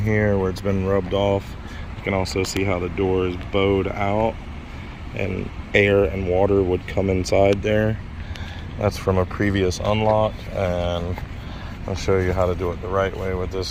where it's been rubbed off. You can also see how the door is bowed out and air and water would come inside there. That's from a previous unlock, and I'll show you how to do it the right way with this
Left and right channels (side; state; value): both; identical; correlation 1.00